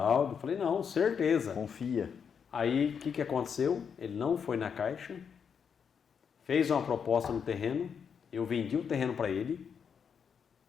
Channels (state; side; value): quieter; right; 6.9 dB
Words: falei, não, certeza. Confia. Aí, o que aconteceu? Ele não foi na Caixa, fez uma proposta no terreno, eu vendi o terreno para ele.